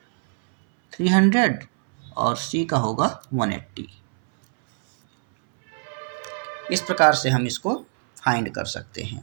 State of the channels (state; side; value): silent; left; 63 dB below the other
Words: 300 और C का होगा 180। इस प्रकार से हम इसको फाइंड कर सकते